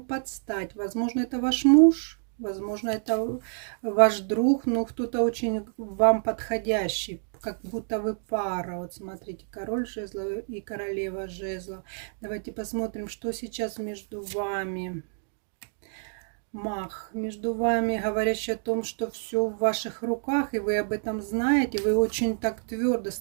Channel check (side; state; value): left; silent; digital silence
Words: подстать. Возможно, это ваш муж, возможно, это ваш друг, но кто-то очень вам подходящий, как будто вы пара. Вот смотрите, король жезлов и королева жезлов. Давайте посмотрим, что сейчас между вами. Маг между вами, говорящий о том, что все в ваших руках, и вы об этом знаете, вы очень так твердо